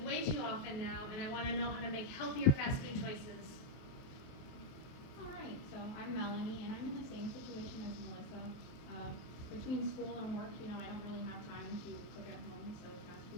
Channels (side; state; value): right; late; 23 ms